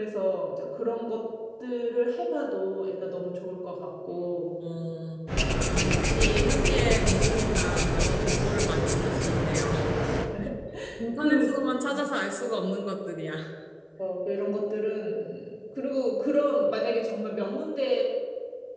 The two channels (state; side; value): identical; both; correlation 1.00